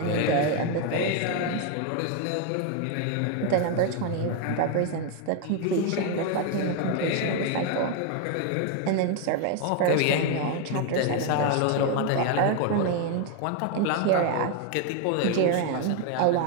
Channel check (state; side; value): different; both; correlation 0.01